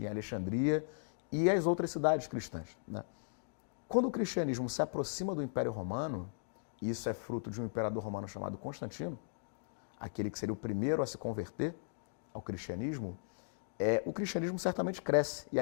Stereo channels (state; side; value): silent; right; digital silence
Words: em Alexandria e as outras cidades cristãs, né? Quando o cristianismo se aproxima do Império Romano, e isso é fruto de um imperador romano chamado Constantino, aquele que seria o primeiro a se converter ao cristianismo, o cristianismo certamente cresce e